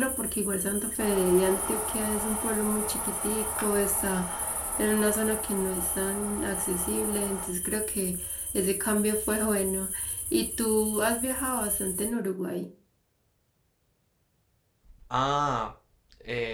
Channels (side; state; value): both; identical; correlation 1.00